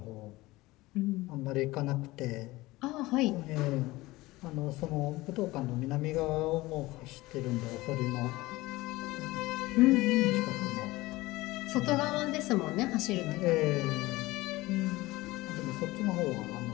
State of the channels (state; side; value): quieter; right; 19.7 dB